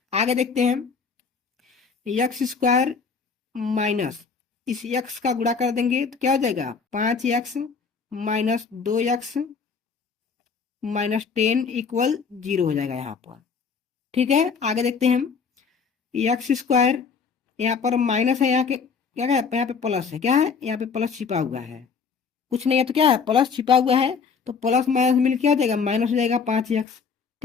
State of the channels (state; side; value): quieter; right; 5.6 dB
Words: आगे देखते हैं। एक्स स्क्वायर माइनस इस एक्स का गुणा कर देंगे तो क्या हो जाएगा? 5x minus 2x minus 10 equal 0 हो जाएगा यहाँ पर, ठीक है। आगे देखते हैं हम। एक्स स्क्वायर यहाँ पर माइनस है, यहाँ के क्या है? यहाँ पे प्लस है, क्या है? यहाँ पे प्लस छिपा हुआ है। कुछ नहीं है तो क्या है? प्लस छिपा हुआ है। तो प्लस माइनस मिल क्या हो जाएगा? माइनस हो जाएगा 5x,